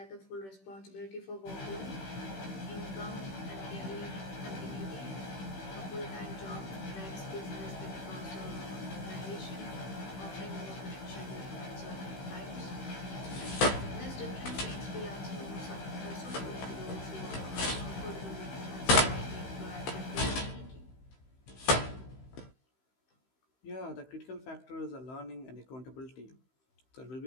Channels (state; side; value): late; right; 16 ms